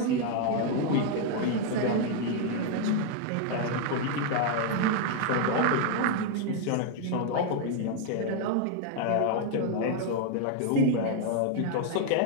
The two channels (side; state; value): both; different; correlation 0.00